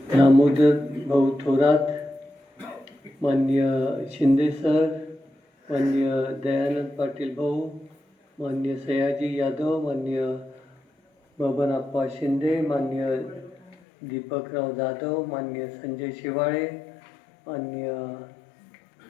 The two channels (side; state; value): right; drops out; at 13.8 s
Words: दामोदर भाऊ थोरात, माननीय शिंदे सर, माननीय दयानंद पाटील भाऊ, माननीय सयाजी यादव, माननीय बबनप्पा शिंदे, माननीय दीपकराव जाधव, माननीय संजय शिवाळे, माननीय